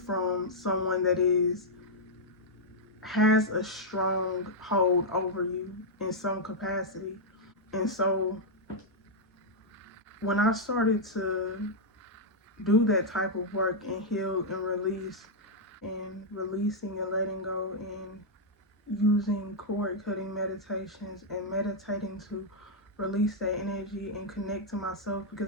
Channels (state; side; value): normal; both; correlation -0.05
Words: from someone that has a strong hold over you in some capacity. And so when I started to do that type of work and heal and release, and releasing and letting go, and using cord cutting meditations and meditating to release that energy and connect to myself,